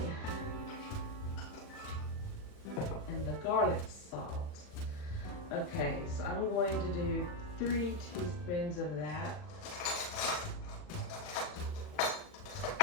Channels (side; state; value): right; late; 40 ms